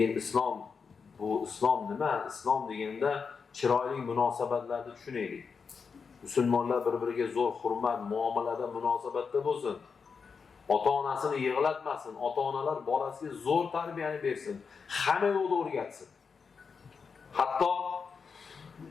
islom nima? Islom deganda chiroyli munosabatlarni tushunaylik. Musulmonlar bir-biriga zo'r hurmat, muomalada, munosabatda bo'lsin. Ota-onasini yig'latmasin, ota-onalar bolasiga zo'r tarbiyani bersin, hamma yo'lda o'rgatsin. Hatto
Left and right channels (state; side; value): quieter; right; 5.6 dB